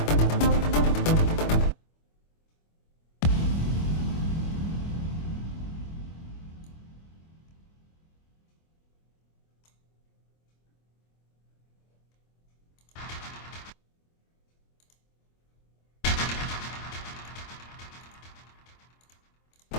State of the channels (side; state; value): right; late; 25 ms